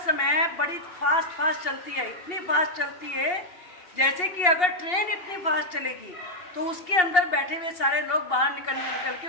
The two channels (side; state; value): right; late; 2.8 ms